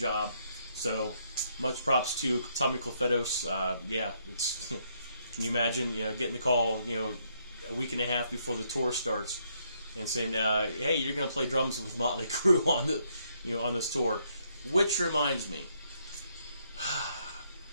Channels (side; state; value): both; inverted; correlation -0.73